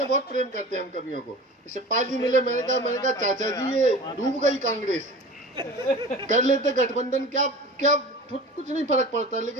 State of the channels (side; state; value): both; normal; correlation 0.37